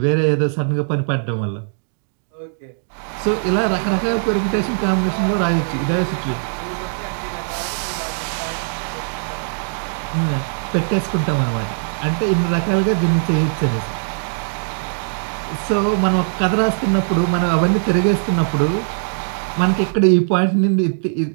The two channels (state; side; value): silent; left; digital silence